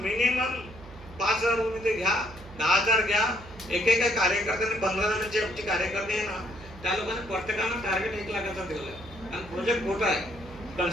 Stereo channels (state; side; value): noise; right; hum, 18 dB below the sound